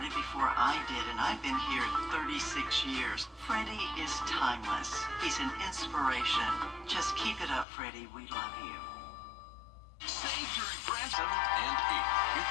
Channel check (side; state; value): right; drops out; at 7.7 s